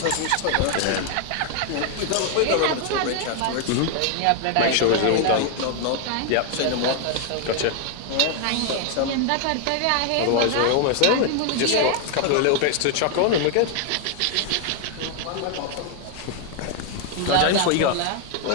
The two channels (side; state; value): both; different; correlation 0.00